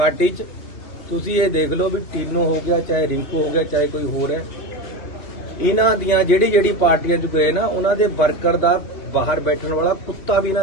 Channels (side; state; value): right; late; 3.2 ms